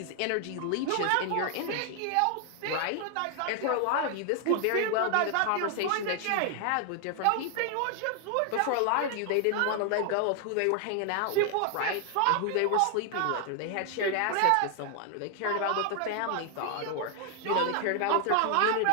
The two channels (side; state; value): both; different; correlation 0.00